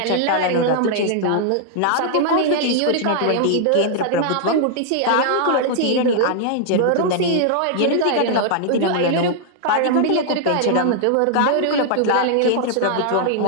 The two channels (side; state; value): both; different; correlation -0.01